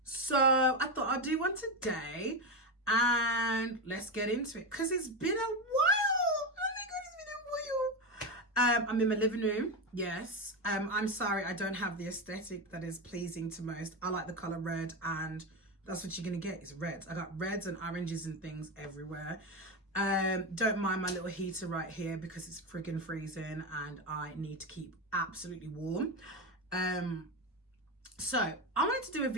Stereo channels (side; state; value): both; normal; correlation 0.14